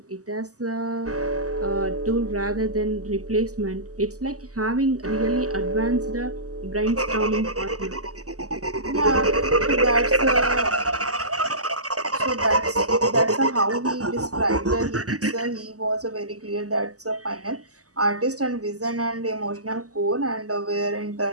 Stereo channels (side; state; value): left; late; 0.66 ms